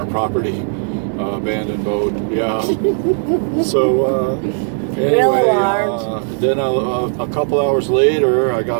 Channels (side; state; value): left; silent; digital silence